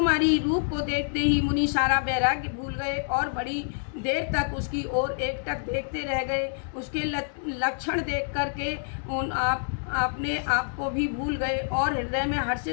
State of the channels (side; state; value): right; silent; digital silence